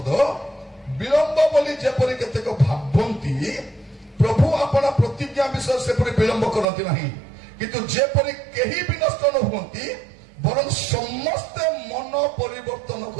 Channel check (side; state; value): left; drops out; at 6.7 s